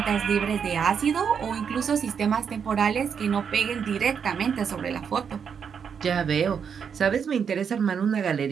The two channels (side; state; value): left; quieter; 7.0 dB